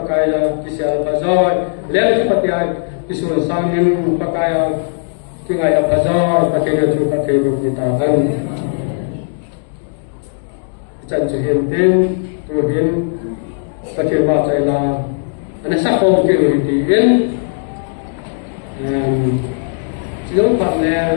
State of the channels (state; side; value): silent; right; digital silence